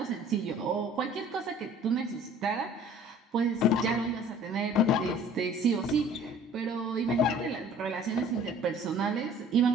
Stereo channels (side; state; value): both; normal; correlation 0.50